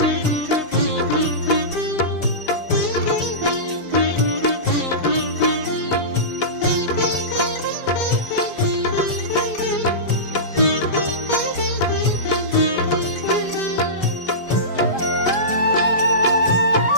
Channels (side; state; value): right; late; 5.0 ms